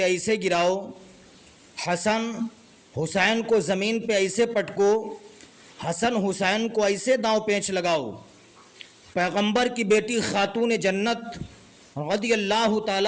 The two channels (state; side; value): identical; both; correlation 1.00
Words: ایسے گراؤ، حسن حسین کو زمین پہ ایسے پٹکو، حسن حسین کو ایسے داؤں پیچ لگاؤ۔ پیغمبر کی بیٹی خاتون جنت رضی اللہ